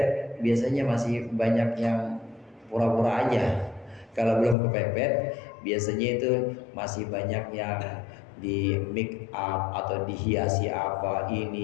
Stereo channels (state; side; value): drops out; right; at 4.5 s